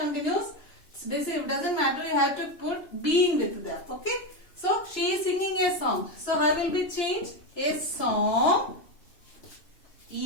it doesn't matter. You have to put being with that. Okay? So she is singing a song. So her will be changed. A song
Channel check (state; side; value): late; right; 2.9 ms